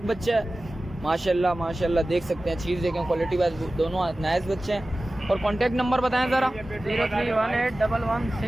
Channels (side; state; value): both; normal; correlation 0.96